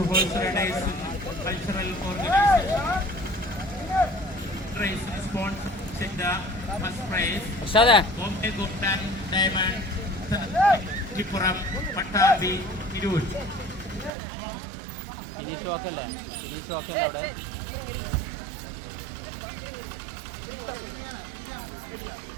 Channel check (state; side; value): drops out; left; at 14.1 s